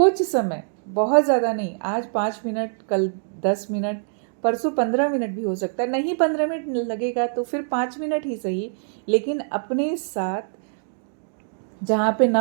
समय, बहुत ज़्यादा नहीं। आज 5 मिनट, कल 10 मिनट, परसों 15 मिनट भी हो सकता है। नहीं 15 मिनट लगेगा तो फिर 5 मिनट ही सही, लेकिन अपने साथ, जहाँ पे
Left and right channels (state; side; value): silent; left; digital silence